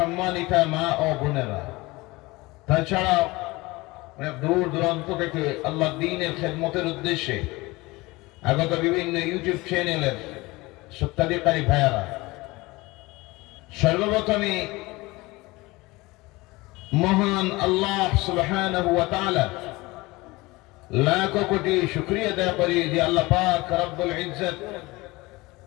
মা ও বোনেরা, তাছাড়া দূর দূরান্ত থেকে আল্লাহ দ্বীনের খেদমতের উদ্দেশ্যে আগত বিভিন্ন ইউটিউব চ্যানেলের সত্যাধিকারী ভাইয়ারা, সর্বপ্রথমে মহান আল্লাহ সুবহানাহু ওয়া তাআলা লাখ কোটি শুকরিয়া আদায় করি যে আল্লাহ পাক রব্বুল ইজ্জত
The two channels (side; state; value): right; quieter; 21.9 dB